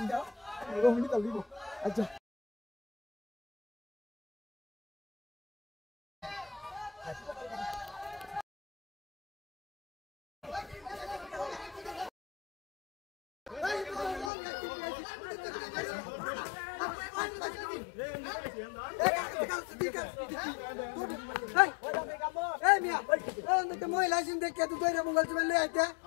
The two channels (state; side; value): drops out; right; at 14.3 s